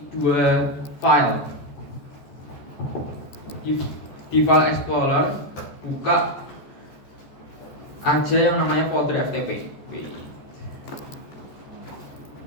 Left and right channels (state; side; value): late; right; 14 ms